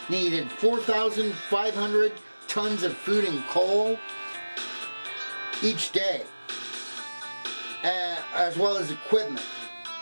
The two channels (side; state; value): both; inverted; correlation -1.00